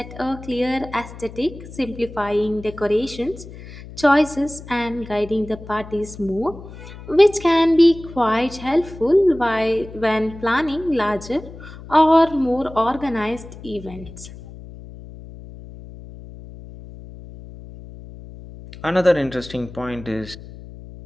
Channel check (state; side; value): noise; left; hum, 15 dB below the sound